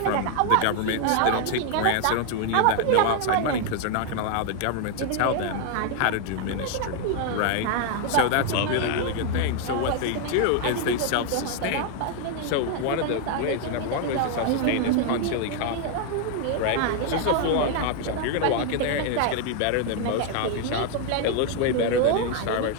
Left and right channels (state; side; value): different; both; correlation 0.00